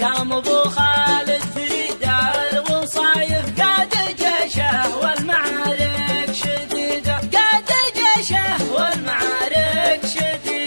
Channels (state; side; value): inverted; both; correlation -1.00